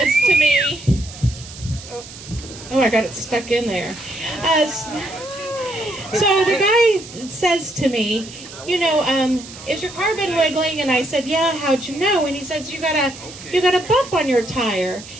to me, oh, I got it stuck in there. So the guy says to me, you know, is your car been wiggling? And I said, yeah, how'd you know? And he says, you got a bump on your tire.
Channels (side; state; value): right; noise; hiss, 16 dB below the sound